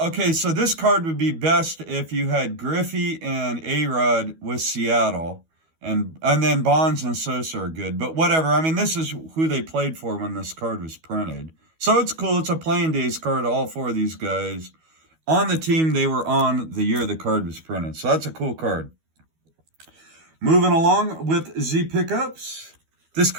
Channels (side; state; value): left; late; 12 ms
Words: so this card would be best if you had Griffey and A-Rod with Seattle, and then Bonds and Sosa are good. But whatever, I mean, this is who they played for when this card was printed. So it's cool. It's a playing days card, all four of these guys on the team they were on the year the card was printed. So that's a cool card. Moving along with Z pickups. This